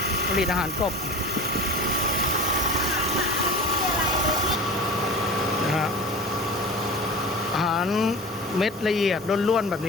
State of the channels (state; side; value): normal; both; correlation 0.35